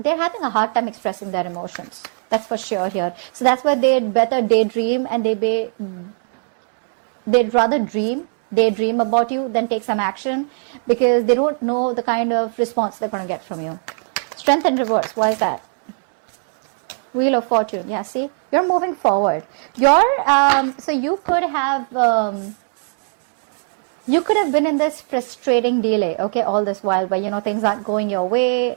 having a hard time expressing their emotions. That's for sure here. So that's why they'd better daydream, and they'd rather daydream about you than take some action, because they don't know the kind of response they're going to get from you. Strength in reverse. Why is that? Wheel of Fortune. Yeah, see, you're moving forward. So you could have been in this frustrating delay, okay, all this while, but things aren't going your way,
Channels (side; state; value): left; silent; 61 dB below the other